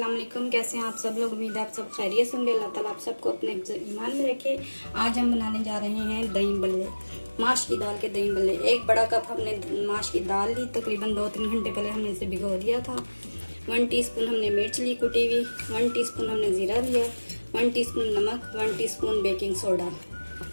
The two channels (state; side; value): inverted; both; correlation -1.00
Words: वालेकुम। कैसे हैं आप सब लोग? उम्मीद है आप सब खैरियत से होंगे। अल्लाह ताला आप सबको अपने ईमान में रखे। आज हम बनाने जा रहे हैं दही बल्ले, माश की दाल के दही बल्ले। एक बड़ा कप हमने माश की दाल ली, तकरीबन 2-3 घंटे पहले हमने इसे भिगो दिया था। 1 टीस्पून हमने मिर्च ली कुटी हुई, 1 टीस्पून हमने ज़ीरा लिया, 1 टीस्पून नमक, 1 टीस्पून बेकिंग सोडा,